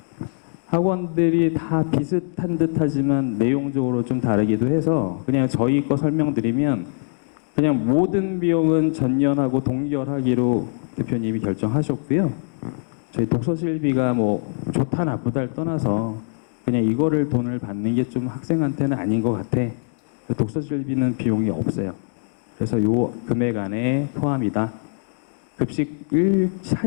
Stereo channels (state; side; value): silent; right; digital silence